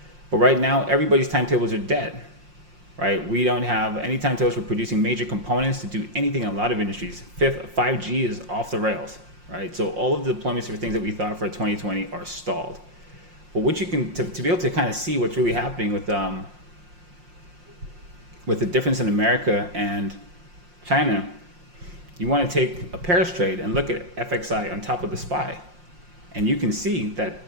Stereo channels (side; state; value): left; late; 5.6 ms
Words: But right now, everybody's timetables are dead, right? We don't have any timetables for producing major components to do anything in a lot of industries. 5G is off the rails, right? So all of the deployments for things that we thought for 2020 are stalled. But what you can, to be able to kind of see what's really happening with the difference in America and China, you want to take a pairs trade and look at FXI on top of the SPY. And you can see